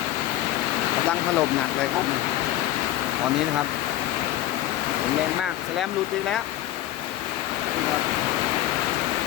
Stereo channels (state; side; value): quieter; right; 13.9 dB